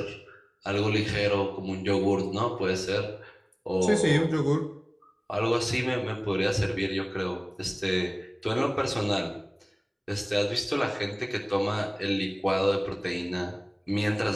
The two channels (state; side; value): identical; both; correlation 1.00